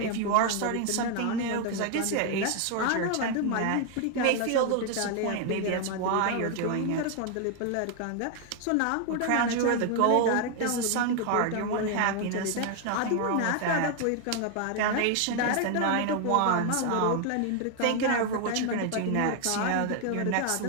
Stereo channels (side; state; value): both; different; correlation 0.00